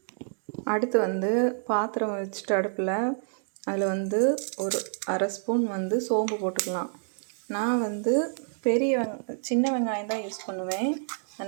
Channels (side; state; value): left; silent; 59 dB below the other